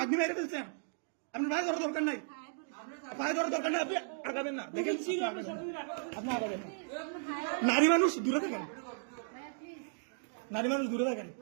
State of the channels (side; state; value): left; silent; digital silence